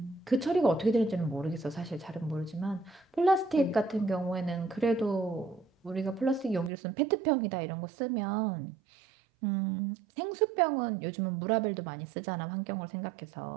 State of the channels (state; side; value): drops out; left; at 6.7 s